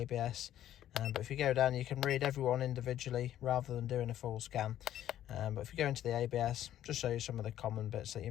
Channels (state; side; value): quieter; right; 11.9 dB